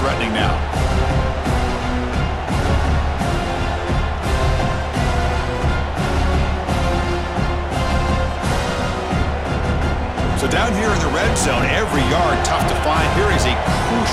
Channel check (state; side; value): identical; both; correlation 1.00